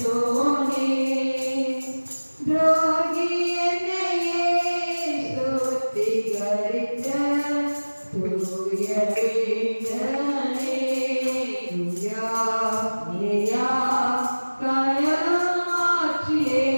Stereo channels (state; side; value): inverted; both; correlation -1.00